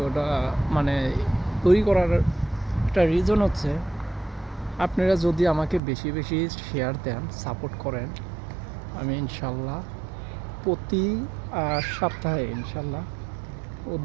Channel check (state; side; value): drops out; left; at 5.8 s